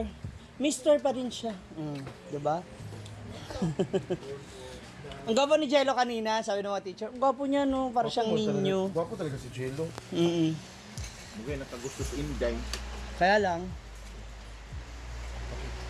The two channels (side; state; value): both; identical; correlation 1.00